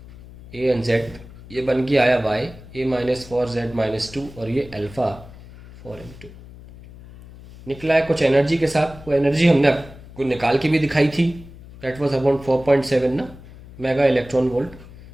a एंड z, ये बन के आया y a-4z-2 और ये अल्फा 4m2 निकला है कुछ एनर्जी के साथ. वो एनर्जी हमने आपको निकाल के भी दिखाई थी. दैट वाज अबाउट 4.7 ना मेगा इलेक्ट्रॉन वोल्ट.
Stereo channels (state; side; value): noise; left; hum, 18 dB below the sound